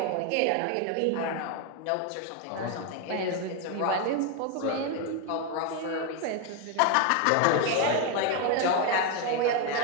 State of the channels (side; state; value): both; different; correlation 0.02